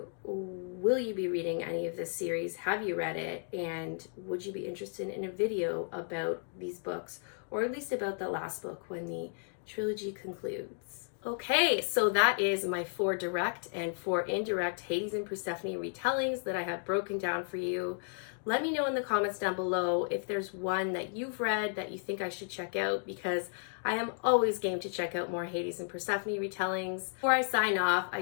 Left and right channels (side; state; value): right; silent; 55 dB below the other